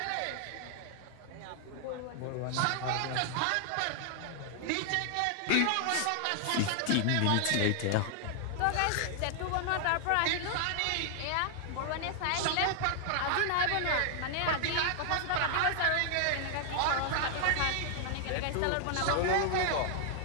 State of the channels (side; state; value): both; different; correlation 0.00